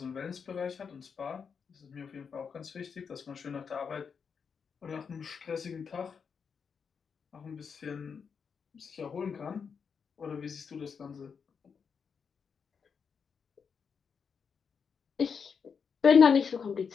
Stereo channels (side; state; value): right; quieter; 6.2 dB